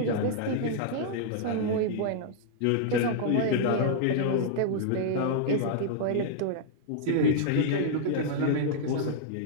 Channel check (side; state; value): both; different; correlation -0.01